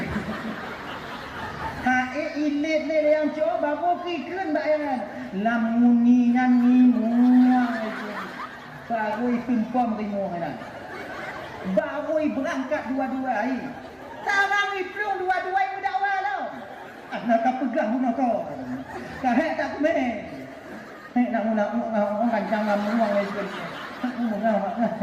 ilit le yang cowai baru kikun bayan lamuningan ngimuang itu baru tumpam ngimuang dah baru berangkat dua-dua sarang iplung dua-dua berdakwa tau nak pegang pun kau. Kahek tak kumeh. Nak kancang ngamuang itu.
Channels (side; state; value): both; identical; correlation 1.00